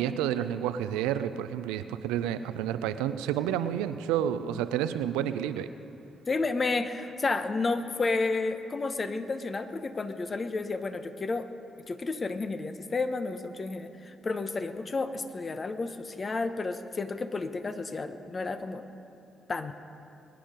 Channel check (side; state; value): both; normal; correlation 0.66